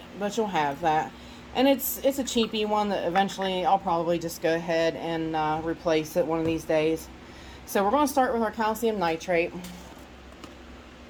you'll have that. And it's a cheapy one that eventually I'll probably just go ahead and replace it one of these days. So we're going to start with our calcium nitrate.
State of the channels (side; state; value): both; identical; correlation 1.00